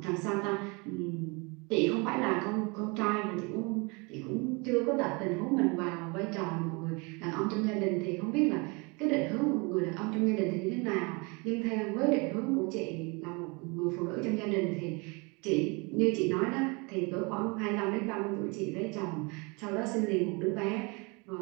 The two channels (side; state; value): left; quieter; 29.3 dB